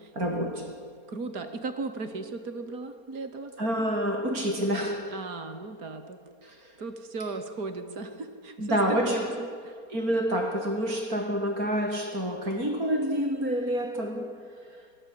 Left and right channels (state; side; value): late; left; 4.3 ms